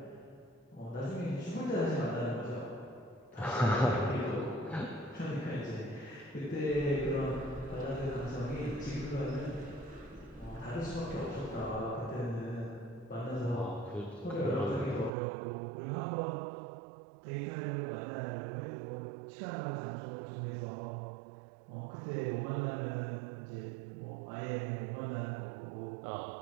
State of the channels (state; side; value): drops out; left; at 15.1 s